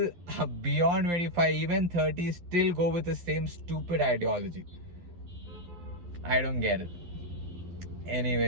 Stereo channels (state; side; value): late; left; 11 ms